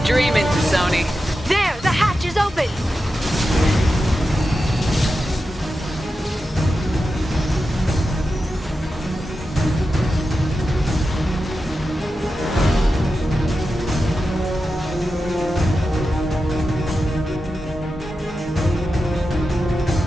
dreaming, Sony. There, the hatch is open.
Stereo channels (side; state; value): both; normal; correlation 0.90